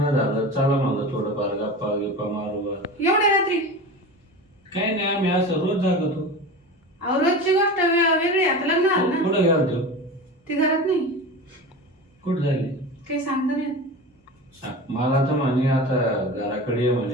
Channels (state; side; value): normal; both; correlation 0.30